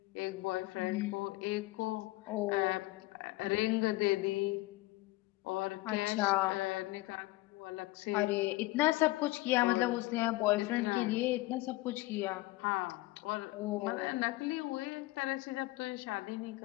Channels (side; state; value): right; quieter; 19.9 dB